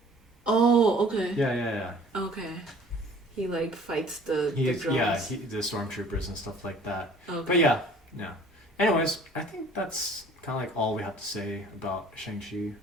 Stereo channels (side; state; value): both; normal; correlation 0.51